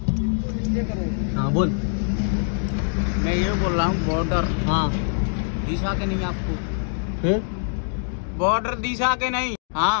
हाँ बोल. मैं ये बोल रहा हूँ बॉर्डर हाँ दिशा के नहीं आपको? फिर बॉर्डर दिशा के नहीं.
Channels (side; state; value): right; silent; digital silence